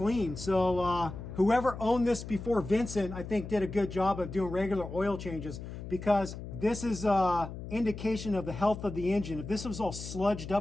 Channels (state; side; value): noise; left; hum, 10 dB below the sound